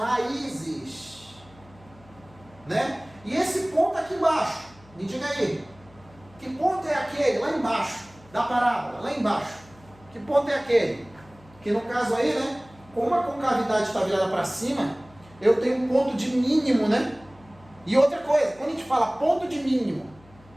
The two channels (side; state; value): left; noise; hum, 26 dB below the sound